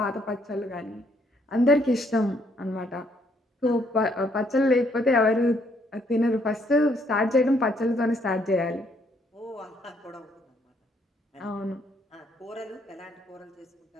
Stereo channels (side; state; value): both; normal; correlation 0.69